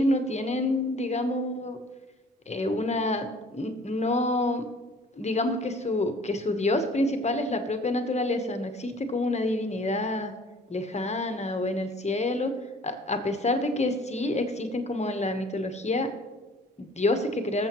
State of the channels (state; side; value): normal; both; correlation 0.52